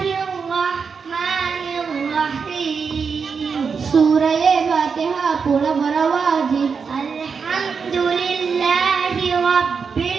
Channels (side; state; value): left; quieter; 5.7 dB